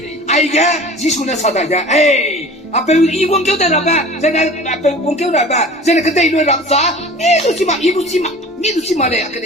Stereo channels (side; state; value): both; normal; correlation 0.42